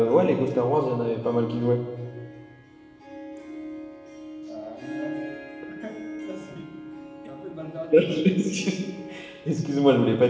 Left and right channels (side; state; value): both; identical; correlation 1.00